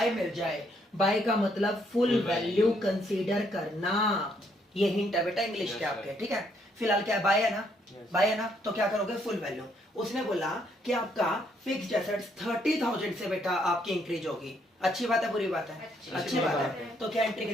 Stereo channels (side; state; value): both; normal; correlation 0.71